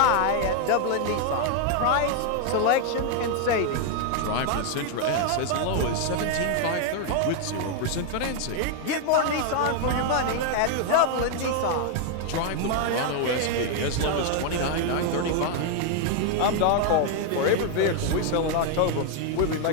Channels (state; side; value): different; both; correlation 0.00